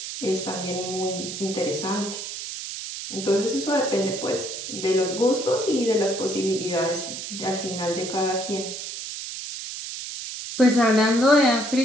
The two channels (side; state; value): right; noise; hiss, 8 dB below the sound